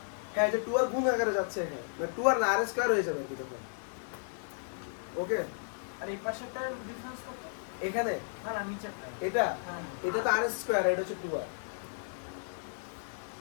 হ্যাঁ যে 2 আর গুণ আকারে যাচ্ছে এখানে, মানে 2 আর না আর স্কয়ার হয়ে যাবে কি তখন। ওকে, আর এই পাশেরটার ডিফারেন্স কত? এখানে না না নিচেরটা। এটা হ্যাঁ। এটা তো আর স্কয়ার, এটা হচ্ছে 2 আর।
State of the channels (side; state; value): right; silent; digital silence